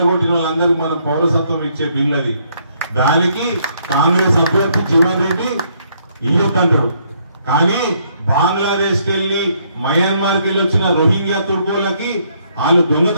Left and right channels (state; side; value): inverted; both; correlation -0.70